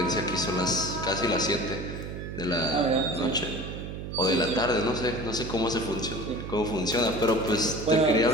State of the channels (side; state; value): right; noise; hum, 7 dB below the sound